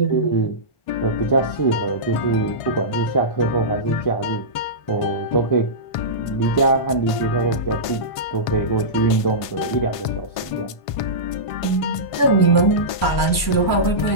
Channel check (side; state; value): right; late; 1.5 ms